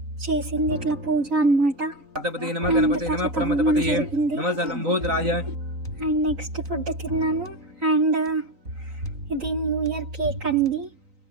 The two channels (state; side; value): late; left; 3.9 ms